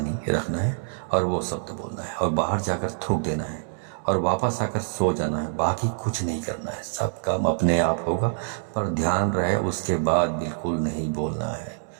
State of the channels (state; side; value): silent; left; digital silence